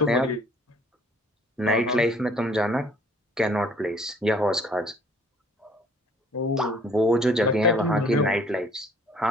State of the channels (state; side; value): normal; both; correlation 0.58